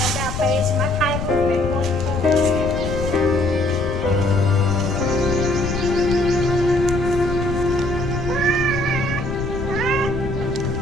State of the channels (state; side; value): noise; left; rumble, 5 dB below the sound